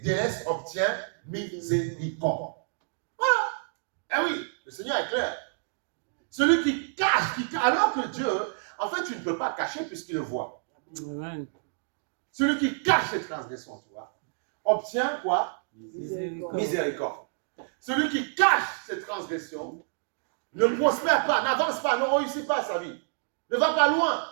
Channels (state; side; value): silent; left; digital silence